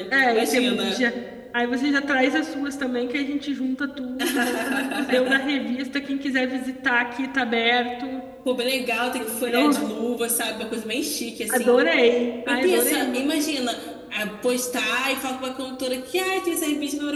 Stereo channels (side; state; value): both; identical; correlation 1.00